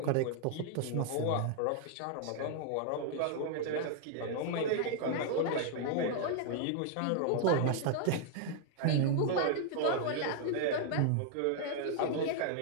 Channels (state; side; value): different; both; correlation 0.00